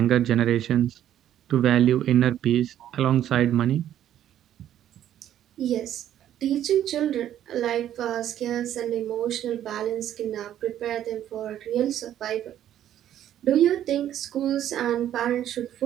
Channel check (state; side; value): quieter; left; 11.2 dB